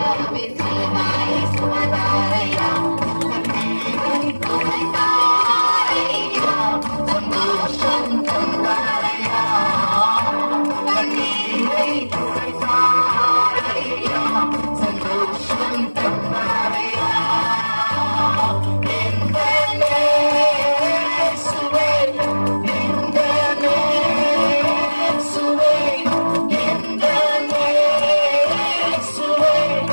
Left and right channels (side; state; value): both; inverted; correlation -1.00